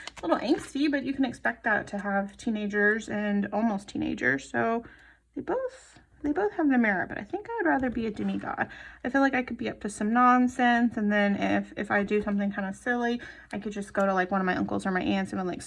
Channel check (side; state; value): both; identical; correlation 1.00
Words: A little angsty, but you can expect that to have teenagers and almost teenagers. So they both have their merit, but I think I would rather be a demigod. I feel like I could be up to some nonsense, and then if I do something kind of silly, I could just go to like one of my uncles or my aunts and be like,